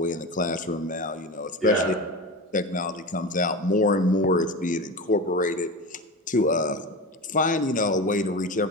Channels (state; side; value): normal; both; correlation 0.25